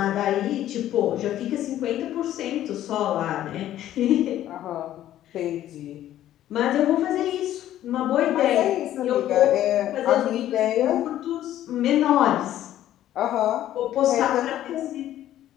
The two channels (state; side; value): quieter; right; 12.6 dB